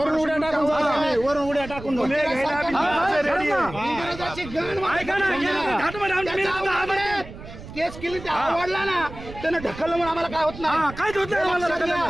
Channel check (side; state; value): right; noise; rumble, 14 dB below the sound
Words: उड्या टाकून केस केली ते आवडला ना, त्यानं ढकललं म्हणून आम्हाला काय होत नाही.